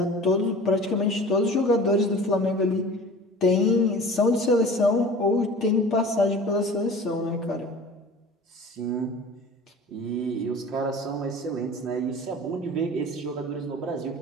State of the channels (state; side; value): normal; both; correlation 0.41